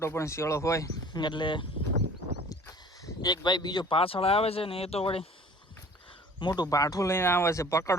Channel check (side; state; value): both; normal; correlation 0.48